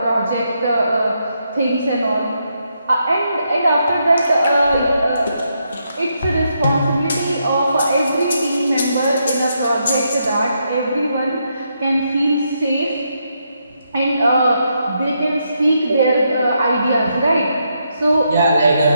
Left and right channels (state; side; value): inverted; both; correlation -0.80